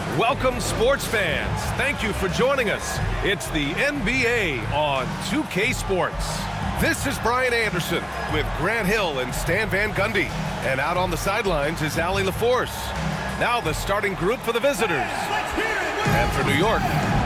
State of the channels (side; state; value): both; identical; correlation 1.00